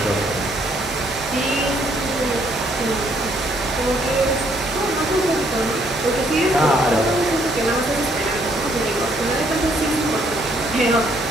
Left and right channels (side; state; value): right; noise; hum, 20 dB below the sound